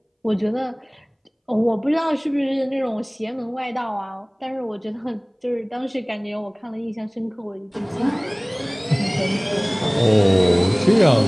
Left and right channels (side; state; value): both; identical; correlation 1.00